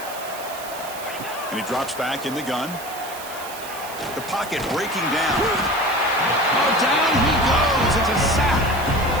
And he drops back in the gun. The pocket breaking down. Oh, down he goes. It's a sack.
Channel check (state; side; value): noise; right; hiss, 13 dB below the sound